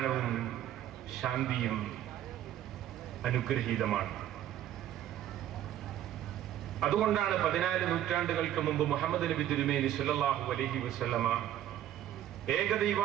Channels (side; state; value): left; quieter; 12.0 dB